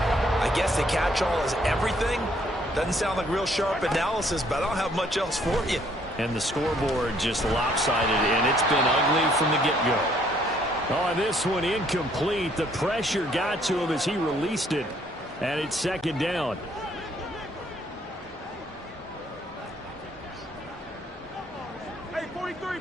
I guess the catch-all is everything. Doesn't sound like real sharp analysis, but I don't have much else for you. And the scoreboard just lopsided, and it's been ugly from the get-go. On this one, incomplete. The pressure got to him as he released it, and it's 2nd down. Hey, 43,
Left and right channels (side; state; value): both; normal; correlation 0.65